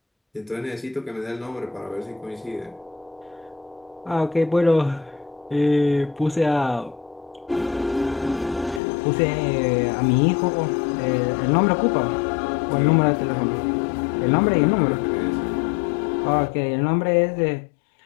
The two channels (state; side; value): drops out; right; at 8.8 s